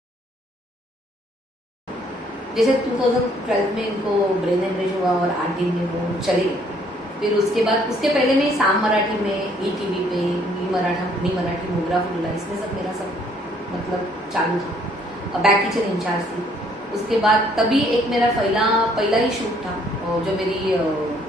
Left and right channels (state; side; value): normal; both; correlation 0.64